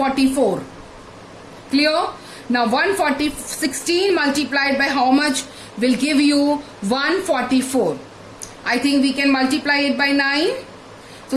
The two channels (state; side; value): identical; both; correlation 1.00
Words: Clear? Now 16 multiplied by how much will give you 144. I think we can multiply it by 9. So